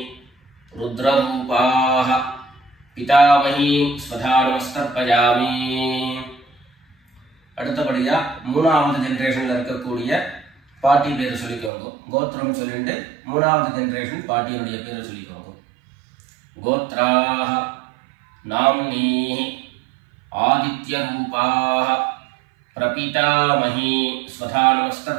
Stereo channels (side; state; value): left; drops out; at 11.7 s